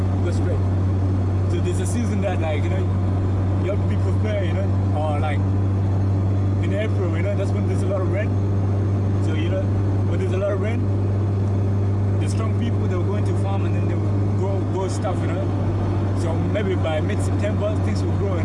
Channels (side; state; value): both; identical; correlation 1.00